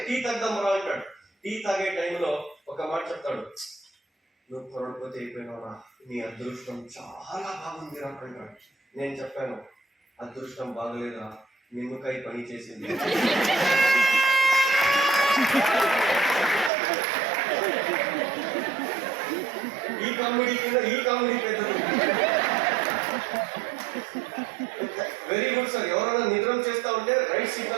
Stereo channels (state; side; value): drops out; left; at 16.7 s